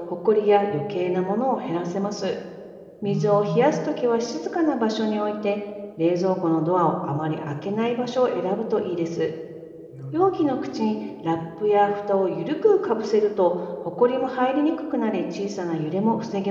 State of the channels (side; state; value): both; identical; correlation 1.00